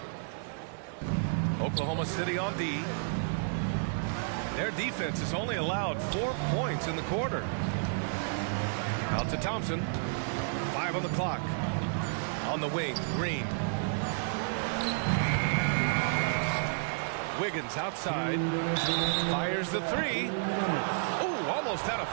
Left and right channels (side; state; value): left; silent; digital silence